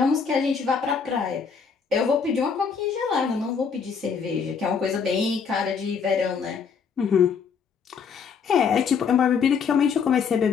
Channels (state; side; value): quieter; right; 6.2 dB